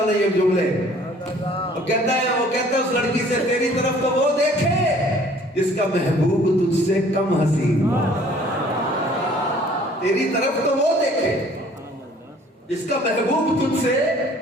नहीं है जुमले। वो कहता है उस लड़की से, तेरी तरफ तो वो देखे जिसका महबूब तुझसे कम हसीन, तेरी तरफ तो वो देखे जिसका महबूब तुझसे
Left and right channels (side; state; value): both; normal; correlation 0.54